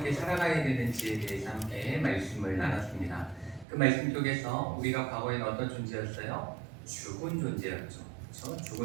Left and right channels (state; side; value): drops out; left; at 3.7 s